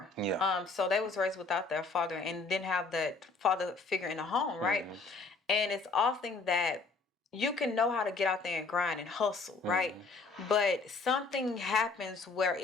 Yeah. So they was raised without their father and didn't have that father figure in the home, right? And it's often that you can know how to get out there and grind and hustle, right? But something happens where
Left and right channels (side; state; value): right; quieter; 4.1 dB